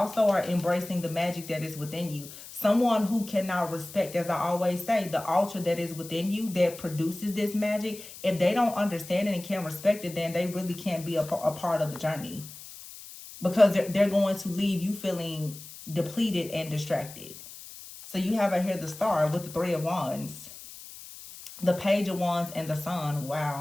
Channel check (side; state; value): left; noise; hiss, 15 dB below the sound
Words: are embracing the magic that is within you. Someone who cannot respect, as I always say, the altar that is within you that produces this magic, if they don't understand it and can't respect it, then they really can't be a part of the journey, because they're going to leave you feeling depleted and distracted. So you have right here the star with the Three of Wands, the Page of Wands, and the Sun.